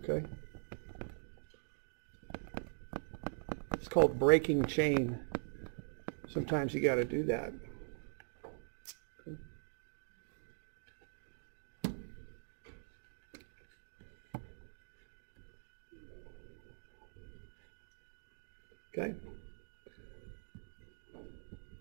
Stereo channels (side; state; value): left; silent; digital silence